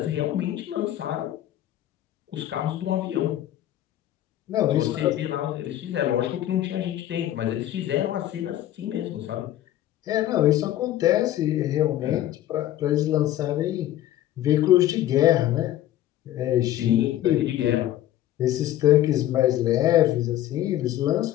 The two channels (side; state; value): right; quieter; 13.1 dB